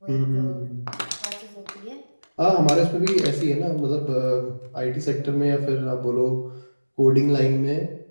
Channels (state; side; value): inverted; both; correlation -1.00